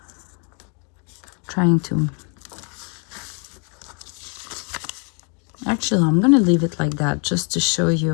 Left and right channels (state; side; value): quieter; right; 36.6 dB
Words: trying to, actually I'm gonna leave it like that just to show